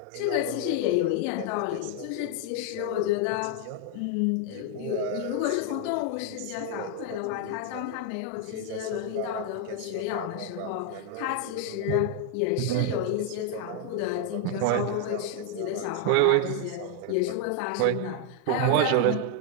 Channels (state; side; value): different; both; correlation 0.00